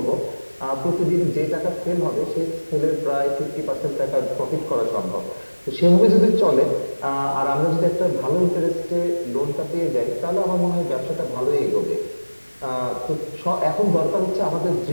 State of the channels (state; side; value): inverted; both; correlation -1.00